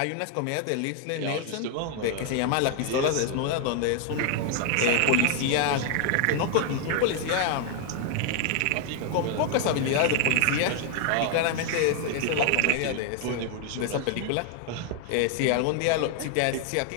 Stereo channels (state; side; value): different; both; correlation 0.00